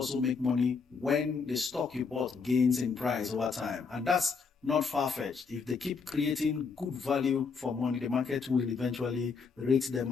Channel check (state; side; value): quieter; right; 5.2 dB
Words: make money when the stock you bought gains in price over time. And that's not far-fetched. If they keep creating good value for money, the market will eventually rate them